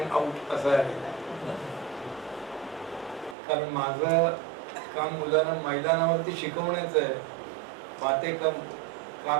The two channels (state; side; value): drops out; left; at 3.4 s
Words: आउट असं आहे, कारण माझं काम मुलांना मैदानावरती शिकवण्याचं आहे, बाते